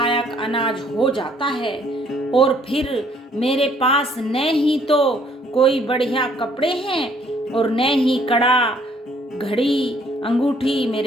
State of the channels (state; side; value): normal; both; correlation 0.63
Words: अनाज हो जाता है, और फिर मेरे पास न ही तो कोई बढ़िया कपड़े हैं और न ही कड़ा, घड़ी, अंगूठी